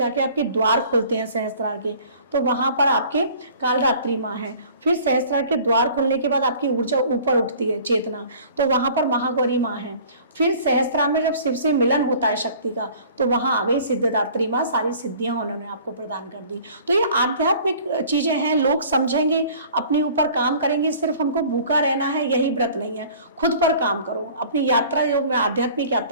आपके द्वार खोलते हैं सहस्त्रार के, तो वहां पर आपके कालरात्रि माँ है। फिर सहस्त्रार के द्वार खोलने के बाद आपकी ऊर्जा ऊपर उठती है, चेतना, तो वहां पर महागौरी माँ है। फिर सहस्त्रार में जब शिव से मिलन होता है शक्ति का, तो वहां आ गई सिद्धदात्री माँ, सारी सिद्धियां उन्होंने आपको प्रदान कर दी। तो ये आध्यात्मिक चीजें हैं, लोग समझेंगे, अपने ऊपर काम करेंगे। सिर्फ हमको भूखा रहना है यही व्रत नहीं है, खुद पर काम करो। अपनी यात्रा, जो मैं आध्यात्मिक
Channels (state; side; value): inverted; both; correlation -0.49